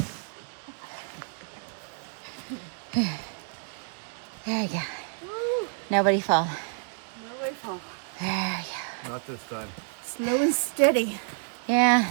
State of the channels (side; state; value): left; silent; 59 dB below the other